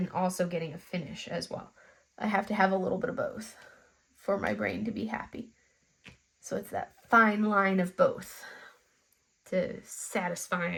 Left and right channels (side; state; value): both; identical; correlation 1.00